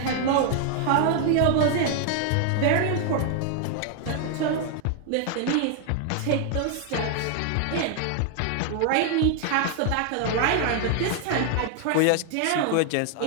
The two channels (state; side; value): different; both; correlation 0.00